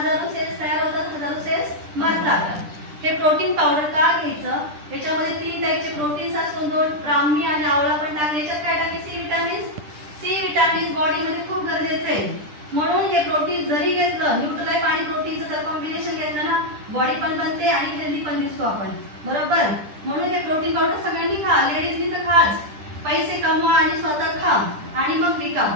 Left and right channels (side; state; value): left; late; 10 ms